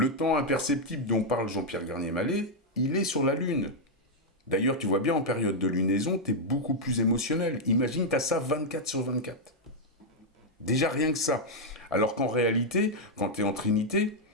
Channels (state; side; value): normal; both; correlation -0.02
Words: temps imperceptible dont parle Jean-Pierre Garnier-Mallet, il est sur la Lune. D'ailleurs, tu vois bien, en période de lunaison, tu es beaucoup plus émotionnel. Imagine, tu as ça 24/24. Déjà rien que ça. Alors qu'en réalité, quand tu es en Trinité,